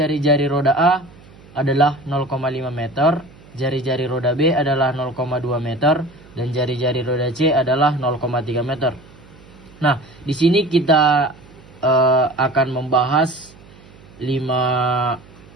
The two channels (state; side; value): noise; right; hum, 23 dB below the sound